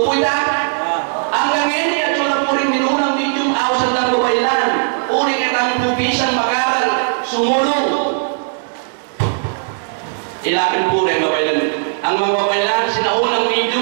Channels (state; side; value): silent; left; digital silence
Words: po ita? Ang gagawin at wala po rin minunang medium, awas ang babaylan. Uring itang pupisang makaral, sumulong. Ilapin po rin babaylan. Ang mga babaylan, sinaunang